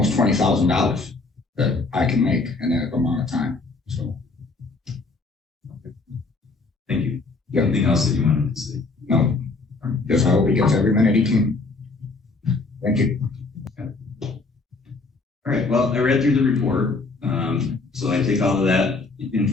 $20,000 that I can make in that amount of time. So. Okay. Thank you. Anything else that you wanted to say? No. Just I hope he gets every minute he can. Thank you. All right. Well, I read through the report. So I take all of that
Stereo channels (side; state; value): right; quieter; 3.8 dB